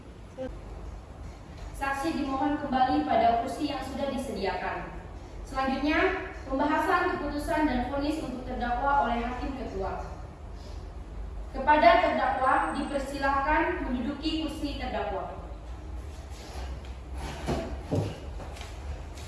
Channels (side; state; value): both; identical; correlation 1.00